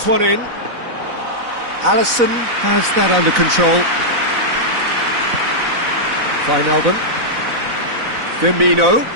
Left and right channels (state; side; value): late; left; 4.0 ms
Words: one in. Alisson has that under control. Wijnaldum. Firmino.